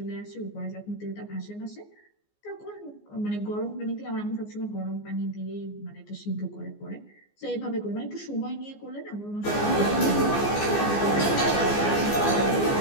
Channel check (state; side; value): late; right; 14 ms